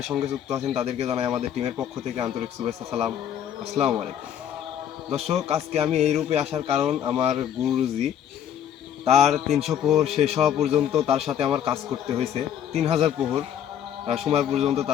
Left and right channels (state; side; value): quieter; right; 9.7 dB